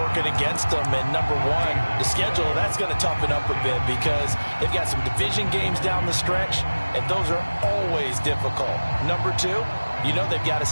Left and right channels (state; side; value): inverted; both; correlation -1.00